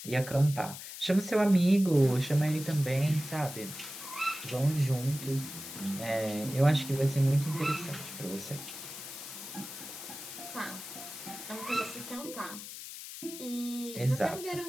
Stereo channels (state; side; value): noise; left; hiss, 11 dB below the sound